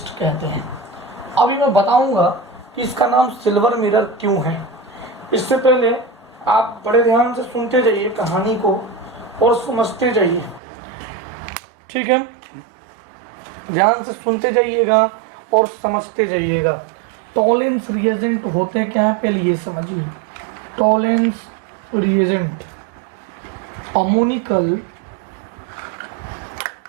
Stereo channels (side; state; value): left; drops out; at 10.6 s